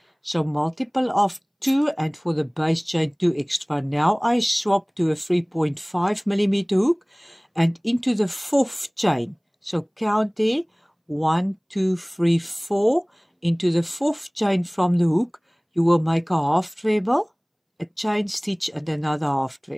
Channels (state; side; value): identical; both; correlation 1.00